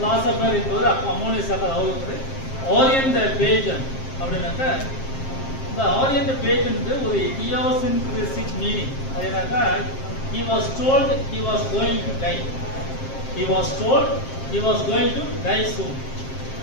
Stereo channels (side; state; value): right; late; 7.5 ms